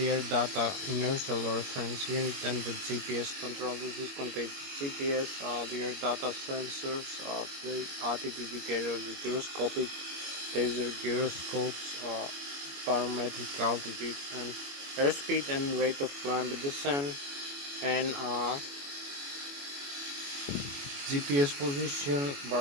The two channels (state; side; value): late; left; 21 ms